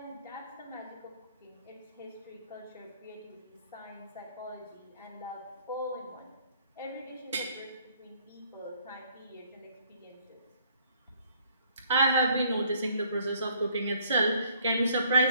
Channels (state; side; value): inverted; both; correlation -0.63